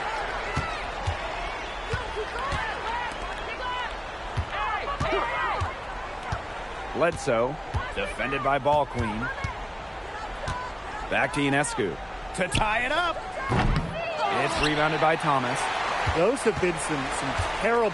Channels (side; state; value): both; identical; correlation 1.00